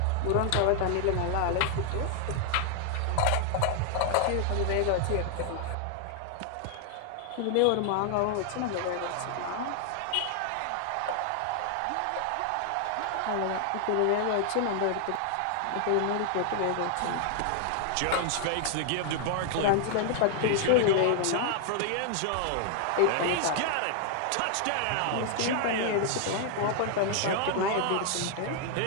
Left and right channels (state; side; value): different; both; correlation 0.00